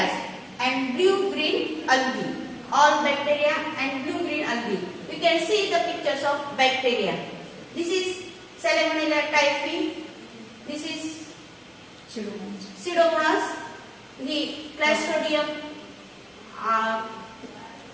and blue-green algae. All bacteria and blue-green algae. We can see the pictures of bacteria. This is Salmonella typhi. This is Pseudomonas. The Clostridium.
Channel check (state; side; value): identical; both; correlation 1.00